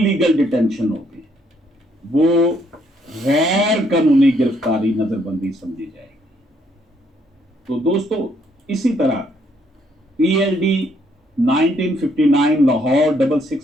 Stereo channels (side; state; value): both; normal; correlation 0.70